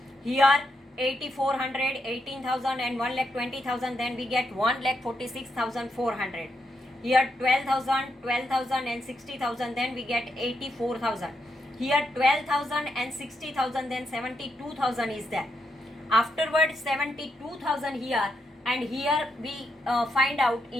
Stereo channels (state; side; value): normal; both; correlation 0.82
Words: Here 8,400, 18,000 and 1,20,000. Then we get 1,46,400. Here 12,000, 12,000 and 60,000. Then we get 84,000. Here 12,000 and 60,000. Then 72,000 is there. Afterwards 72,000 here. And here we find out